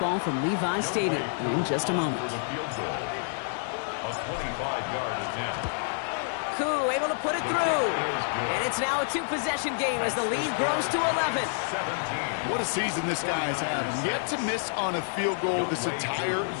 from Levi Stadium in just a moment. A 25-yard attempt. Koo able to put it through. And it's now a 2-possession game as the lead grows to 11. What a season this guy's had. Yet to miss on a field goal this entire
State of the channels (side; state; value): right; silent; 59 dB below the other